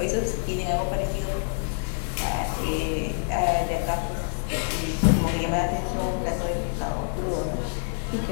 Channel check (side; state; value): right; silent; 61 dB below the other